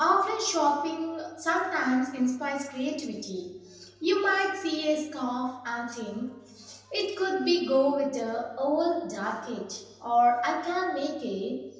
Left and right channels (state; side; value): identical; both; correlation 1.00